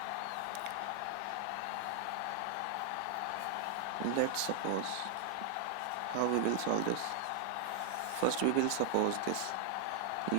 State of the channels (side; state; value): both; different; correlation 0.00